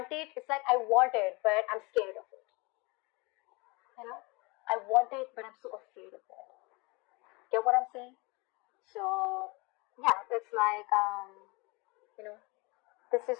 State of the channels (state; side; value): quieter; right; 26.9 dB